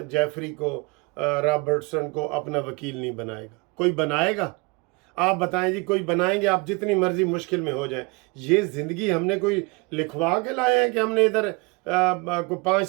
जेफरी को, रॉबर्टसन को अपना वकील नहीं बनाएगा। कोई बनाएगा? आप बताएं जी, कोई बनाएंगे? आप जितनी मर्जी मुश्किल में हो जाए। ये ज़िंदगी हमने कोई लिखवा के लाए हैं कि हमने इधर को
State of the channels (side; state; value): left; quieter; 28.2 dB